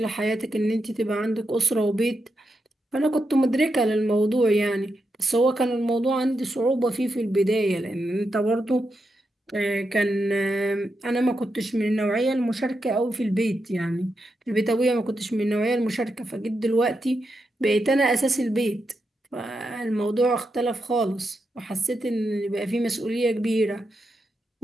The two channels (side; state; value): both; normal; correlation 0.86